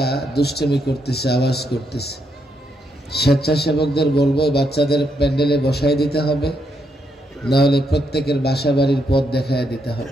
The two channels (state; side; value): normal; both; correlation 0.78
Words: দুষ্টামি করতেছে, আওয়াজ করতেছে। স্বেচ্ছাসেবকদের বলবো বাচ্চাদের প্যান্ডেলে বসাই দিতে হবে, না হলে প্রত্যেকের বাসা বাড়ির পথ দেখায় দিতে